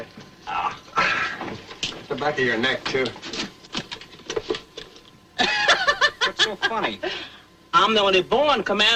The back of your neck, too. What's so funny? I'm the only born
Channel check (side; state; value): both; identical; correlation 1.00